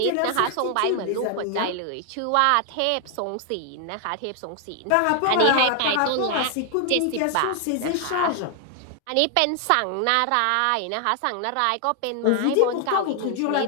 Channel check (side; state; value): both; different; correlation 0.00